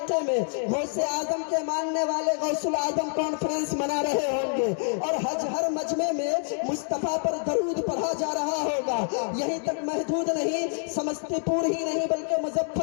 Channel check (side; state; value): right; silent; 56 dB below the other